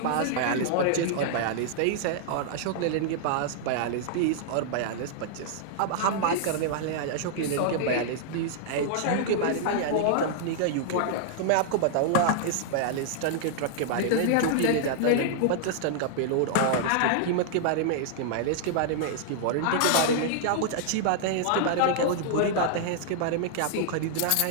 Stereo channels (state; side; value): different; both; correlation -0.01